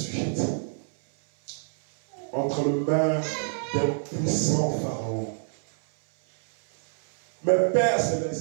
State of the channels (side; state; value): left; silent; 61 dB below the other